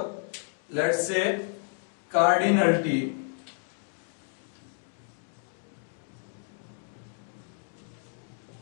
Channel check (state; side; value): silent; right; 57 dB below the other